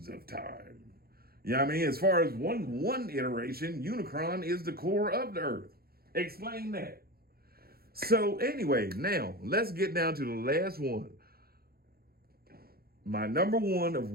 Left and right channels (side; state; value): left; late; 0.44 ms